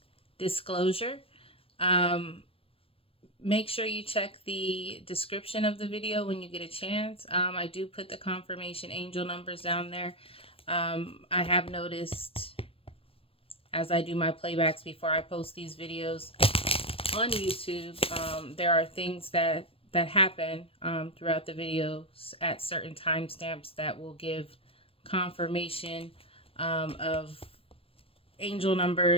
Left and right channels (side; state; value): right; late; 0.27 ms